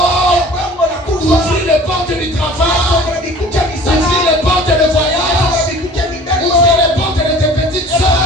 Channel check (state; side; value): normal; both; correlation 0.46